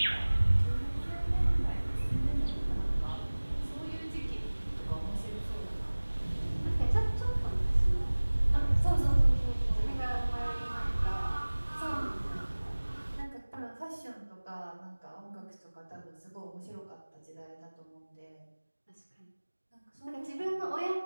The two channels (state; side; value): inverted; both; correlation -1.00